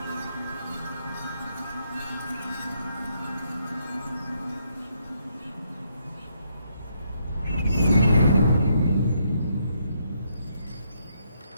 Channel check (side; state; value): both; inverted; correlation -0.75